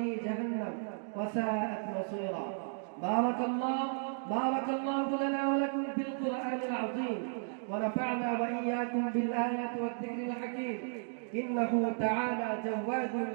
جهنم وساءت مصيرا. بارك الله لنا ولكم في القرآن العظيم، ونفعنا وإياكم بالآيات والذكر الحكيم. إنه تعالى جواد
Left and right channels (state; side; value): silent; left; digital silence